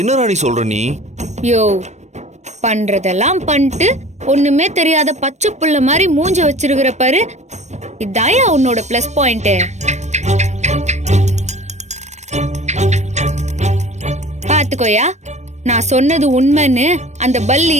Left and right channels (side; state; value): left; late; 0.34 ms